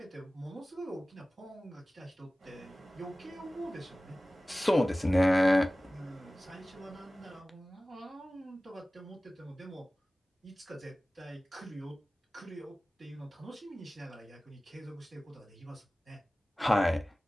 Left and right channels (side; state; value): both; normal; correlation 0.97